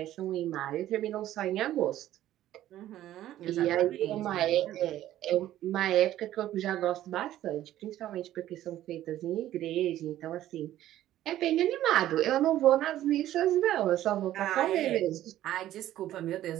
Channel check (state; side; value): quieter; left; 13.3 dB